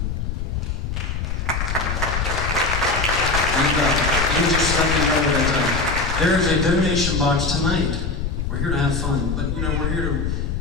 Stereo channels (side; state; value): left; noise; rumble, 2 dB below the sound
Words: And let me just let you know that there is a donation box tonight. We're here to have fun, but you know, we're here to